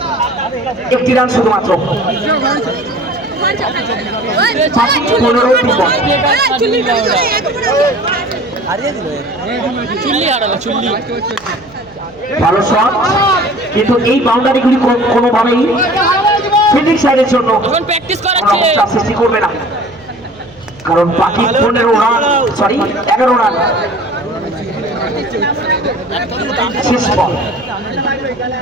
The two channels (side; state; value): right; noise; hum, 26 dB below the sound